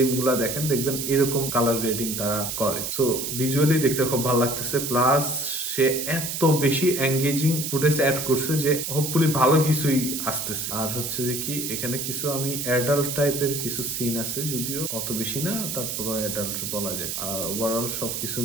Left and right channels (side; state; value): right; noise; hiss, 4 dB below the sound